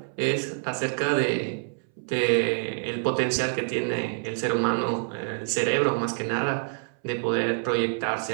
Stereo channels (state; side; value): silent; left; 60 dB below the other